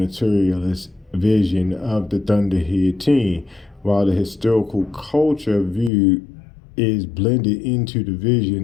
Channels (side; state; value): right; drops out; at 5.9 s